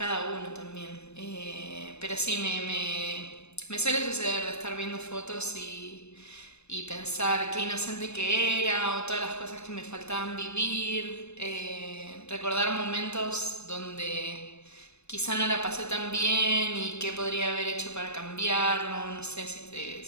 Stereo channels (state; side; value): late; right; 0.81 ms